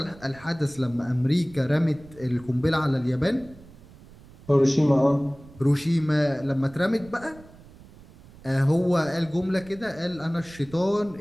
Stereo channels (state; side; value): noise; right; rumble, 22 dB below the sound